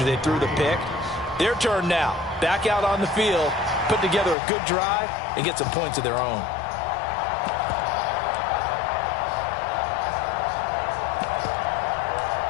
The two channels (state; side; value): drops out; right; at 4.4 s